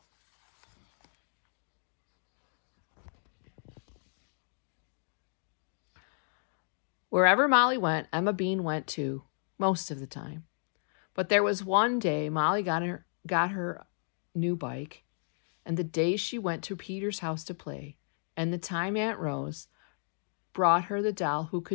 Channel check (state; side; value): silent; right; digital silence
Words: Wherever Molly went, Emma Bean went too, most of the time. But there was one day Molly got her new bike, and the day she went to Peter's house to play, and the time Aunt Rose brought her the doll who